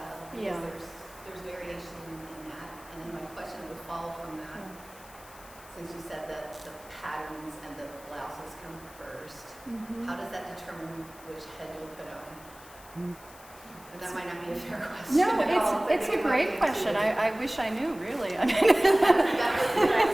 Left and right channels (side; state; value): left; noise; hiss, 21 dB below the sound